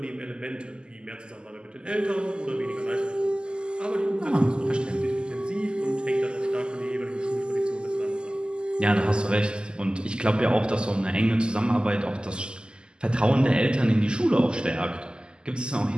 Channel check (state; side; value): late; left; 0.048 ms